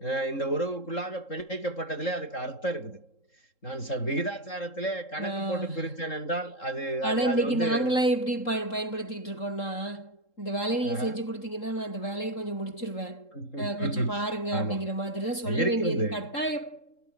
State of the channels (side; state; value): right; late; 3.7 ms